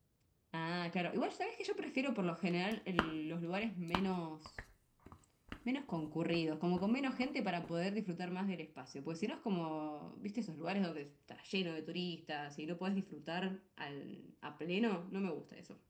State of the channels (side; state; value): both; identical; correlation 1.00